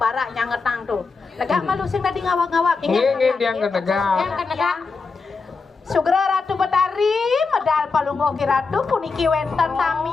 Barak nyanget nang tuh. Negak malu sing tadi ngawak-ngawak. Nge dia negak. Yang kan negak. Sugra Ratu Betari medal palunggo ki Ratu puniki wenten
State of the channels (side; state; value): right; quieter; 4.5 dB